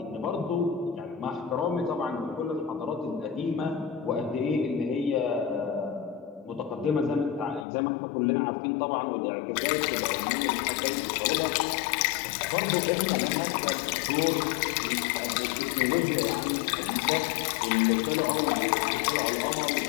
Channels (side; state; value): right; drops out; at 7.7 s